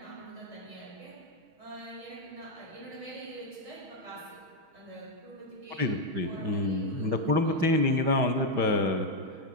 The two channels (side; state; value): left; late; 6.3 ms